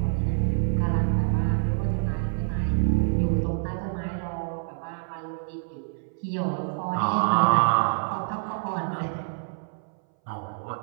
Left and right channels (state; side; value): silent; left; 59 dB below the other